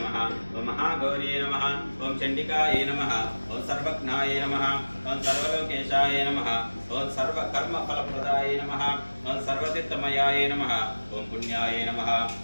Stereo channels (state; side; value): inverted; both; correlation -1.00